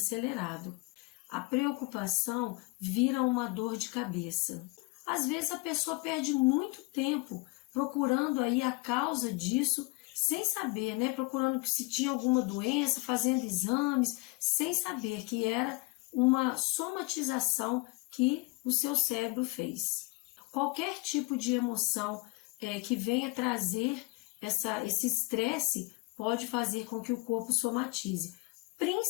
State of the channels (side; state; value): right; quieter; 26.4 dB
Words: A preocupação vira uma dor de cabeça. Às vezes a pessoa perde muito tempo procurando aí a causa disso, sem saber, né? Procurando se tinha alguma doença, fazendo exames, sem saber que era uma somatização que o seu cérebro fez. Qualquer tipo de emoção que venha trazer esse estresse pode fazer com que o corpo somatize,